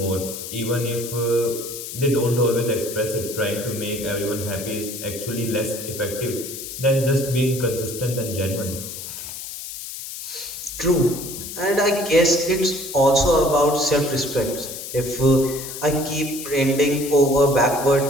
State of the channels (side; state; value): left; noise; hiss, 9 dB below the sound